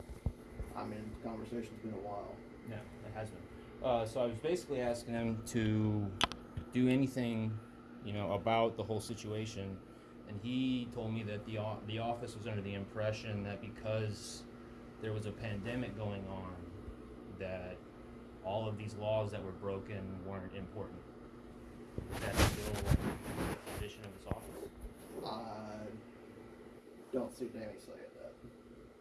I mean, the conversation's been a while. Yeah, it has been. So I was basically asking him to do anything, about the whole situation, and he told me that the office was under the impression that because there was a pandemic going on, that all of these laws that were broken weren't important. Is that still the position of this office? I don't see Danny saying that.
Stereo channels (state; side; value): identical; both; correlation 1.00